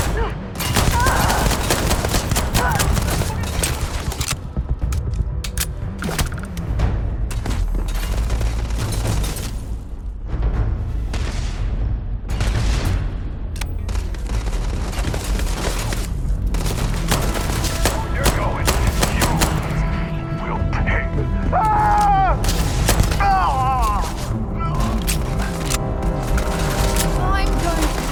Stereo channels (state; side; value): identical; both; correlation 1.00